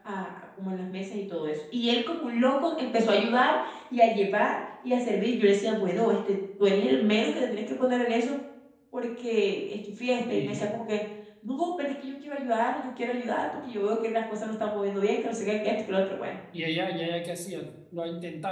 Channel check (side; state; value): both; identical; correlation 1.00